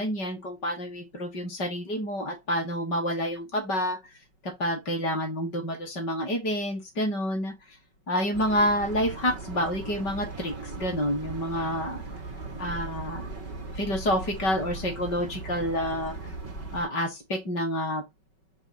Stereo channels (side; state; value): right; late; 5.3 ms